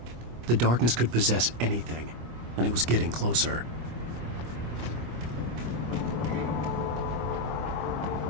The darkness could possess anything, and it was getting closer.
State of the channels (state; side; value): late; left; 25 ms